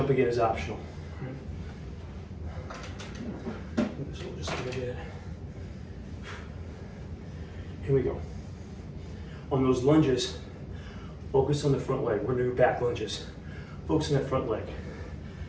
again is optional. So we'll just go ahead. Here we go. On those lunges, focus on the front leg. We're gonna do back lunges. Focus on that front leg.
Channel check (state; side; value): identical; both; correlation 1.00